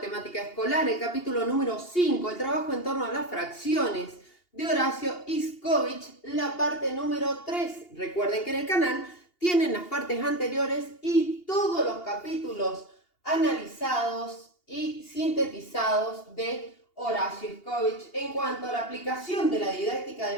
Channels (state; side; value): late; right; 2.8 ms